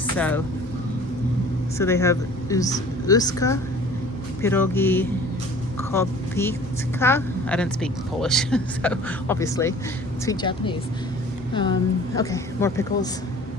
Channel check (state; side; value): normal; both; correlation 0.47